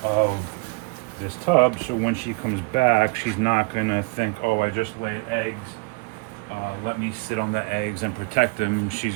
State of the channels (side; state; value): left; quieter; 28.7 dB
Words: of this tub. So when she comes back, she's not gonna think, oh, I just laid eggs. Let me sit on the eggs and protect them.